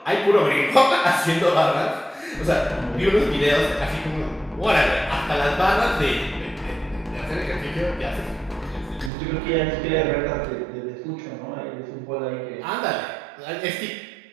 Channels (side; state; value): left; drops out; at 9.1 s